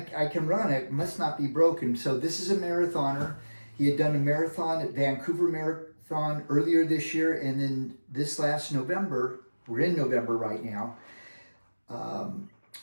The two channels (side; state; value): both; inverted; correlation -1.00